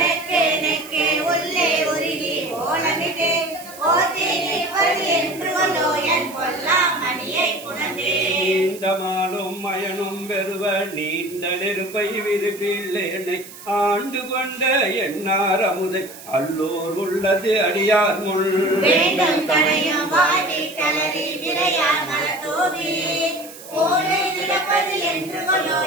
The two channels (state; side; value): noise; right; hiss, 17 dB below the sound